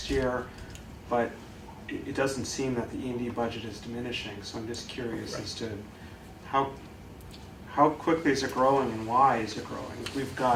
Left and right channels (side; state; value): both; identical; correlation 1.00